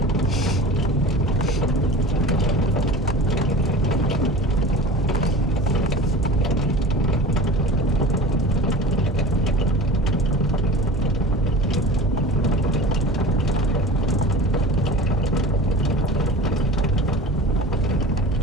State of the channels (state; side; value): normal; both; correlation 0.37